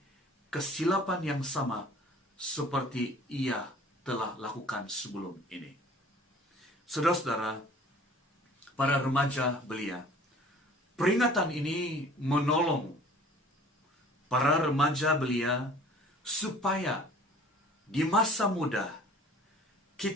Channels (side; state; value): both; normal; correlation 0.49